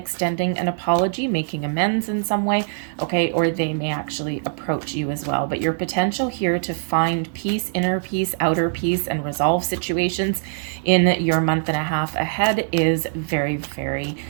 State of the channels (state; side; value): silent; left; digital silence